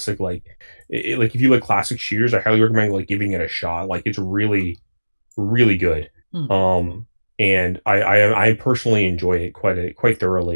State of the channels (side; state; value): both; inverted; correlation -1.00